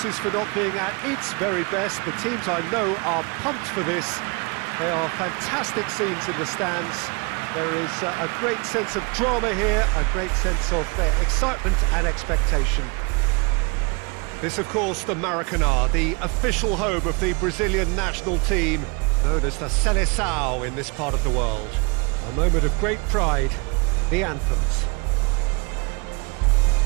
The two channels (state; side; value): quieter; left; 30.4 dB